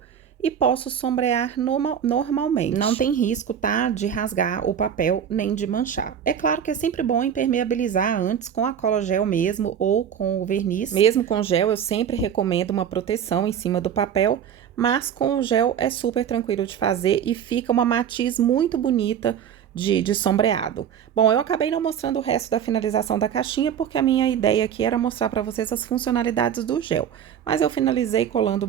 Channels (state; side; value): quieter; left; 8.7 dB